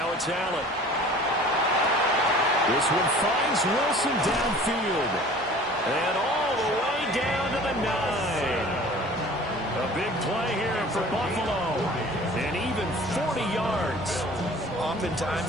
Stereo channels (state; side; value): noise; right; hum, 26 dB below the sound